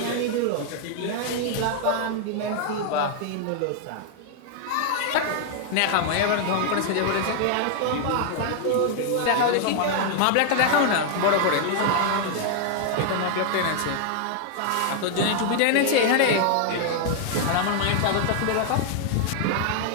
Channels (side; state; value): both; different; correlation 0.00